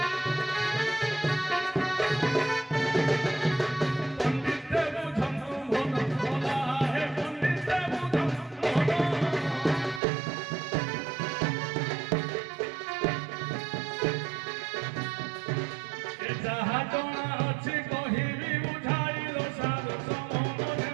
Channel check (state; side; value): drops out; left; at 10.0 s